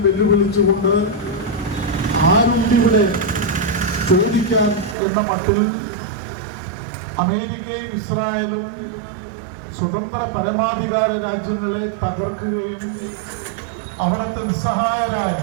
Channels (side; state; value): left; drops out; at 5.0 s